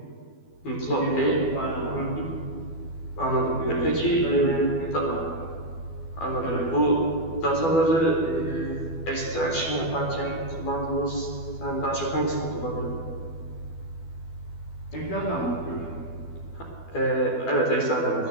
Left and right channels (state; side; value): late; right; 12 ms